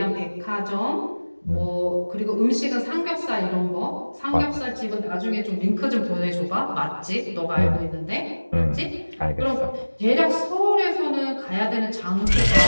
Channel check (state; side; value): inverted; both; correlation -1.00